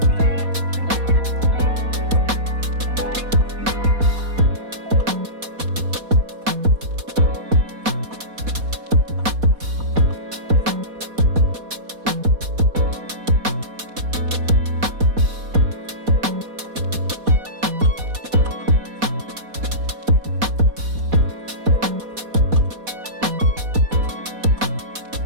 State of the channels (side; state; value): left; late; 4.1 ms